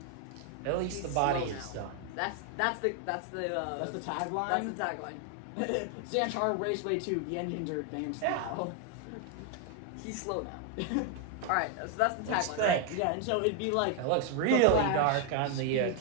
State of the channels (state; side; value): different; both; correlation 0.01